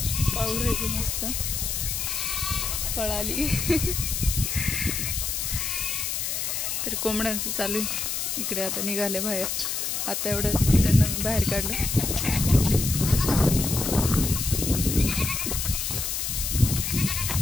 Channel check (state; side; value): noise; left; hiss, 1 dB below the sound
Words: पाऊस आहे मस्त, पळाली। तर कोंबड्यांचं चालू इकडे आता निघाले बाहेर। आता एवढं त्यांना मी बाहेर काढलं।